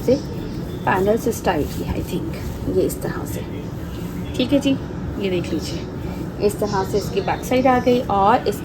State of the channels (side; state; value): both; identical; correlation 1.00